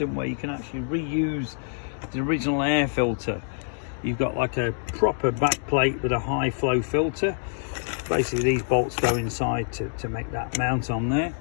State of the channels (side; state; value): right; silent; digital silence